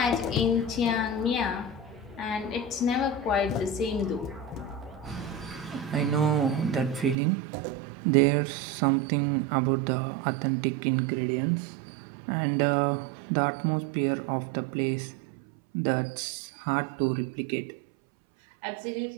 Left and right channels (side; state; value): left; drops out; at 7.2 s